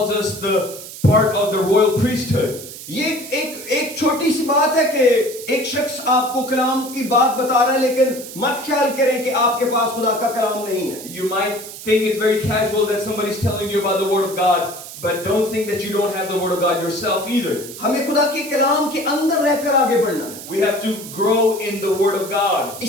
us the part of the royal priesthood. ये एक छोटी सी बात है कि एक शख्स आपको कलाम की बात बता रहा है, लेकिन मत ख्याल करें कि आपके पास खुदा का कलाम नहीं है. You might think it's very casual that somebody's telling you about the Word of God, but don't think that you don't have the Word of God yourself either. हमें खुदा के कलाम के अंदर रहकर आगे बढ़ना है. We have to grow in the Word of God.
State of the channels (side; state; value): right; noise; hiss, 13 dB below the sound